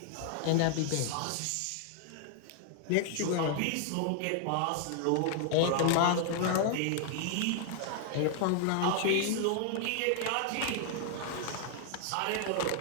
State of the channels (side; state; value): both; different; correlation 0.00